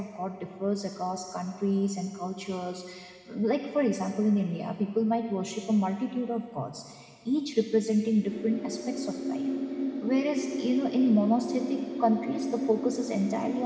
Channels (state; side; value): identical; both; correlation 1.00